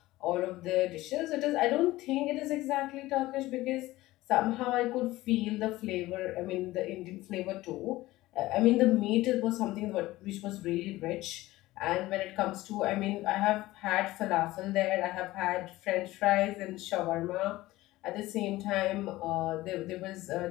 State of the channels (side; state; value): right; quieter; 17.7 dB